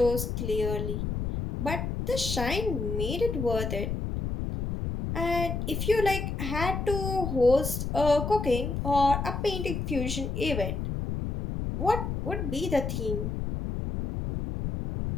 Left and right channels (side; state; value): left; noise; rumble, 3 dB below the sound